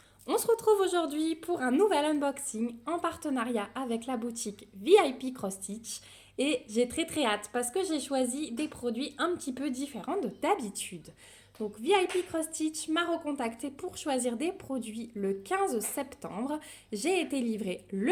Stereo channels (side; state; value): both; identical; correlation 1.00